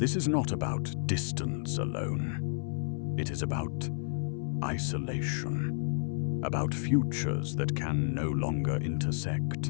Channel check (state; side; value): silent; right; 57 dB below the other